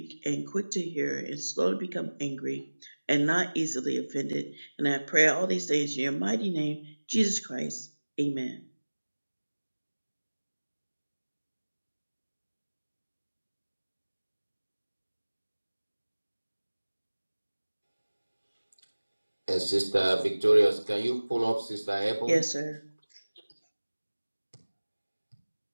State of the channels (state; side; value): inverted; both; correlation -1.00